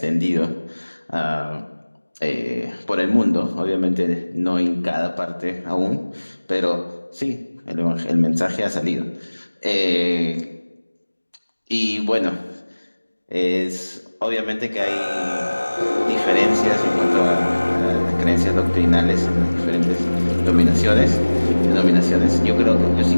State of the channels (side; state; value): both; inverted; correlation -1.00